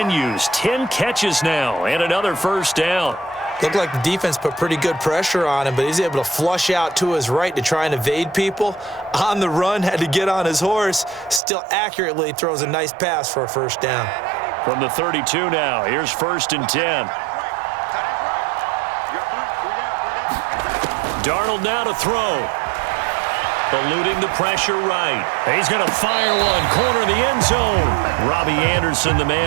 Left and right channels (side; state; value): left; drops out; at 11.4 s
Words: 10 catches now and another 1st down. Looked like the defense put pretty good pressure on him, but he's able to flush out to his right to try and evade people. On the run, had to get on his horse. Still accurately throws a nice pass for a 1st down. From the 32 now, here's 1st and 10. Darnold now to throw. Eluding the pressure right. He's going to fire one. Corner of the end zone. Robbie Anderson, the